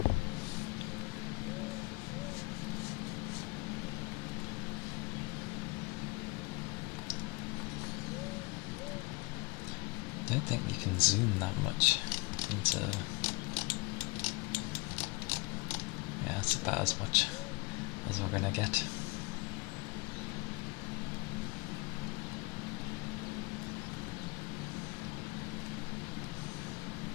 I don't think you can zoom that much into... Yeah, it's about as much as we're gonna get.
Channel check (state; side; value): quieter; right; 25.5 dB